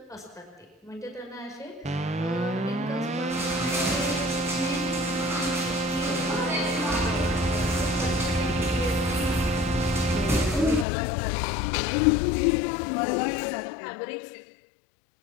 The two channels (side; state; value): right; drops out; at 10.9 s